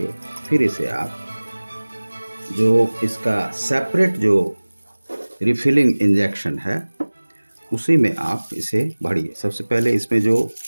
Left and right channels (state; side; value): inverted; both; correlation -1.00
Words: फिर इसे आप जो इसका सेपरेट जो रिफिलिंग इंजेक्शन है उसी में आप इसे भरिए। सबसे पहले इसमें जो